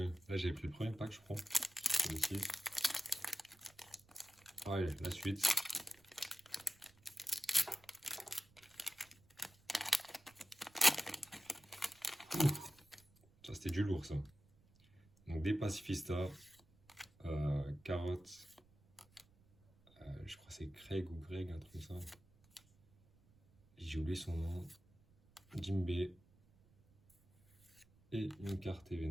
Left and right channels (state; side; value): noise; right; rumble, 29 dB below the sound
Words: Là, j'ai pris le premier pack, je crois. Celui-ci. Ouais, la suite. Ça, c'était du lourd, ça. Donc, des pacifistas, carottes. Je crois que c'est Craig ou Greg, un truc comme ça. J'ai oublié son nom. Jimbei. Et une carte